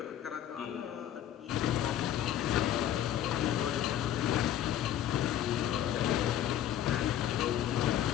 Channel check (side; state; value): right; quieter; 11.1 dB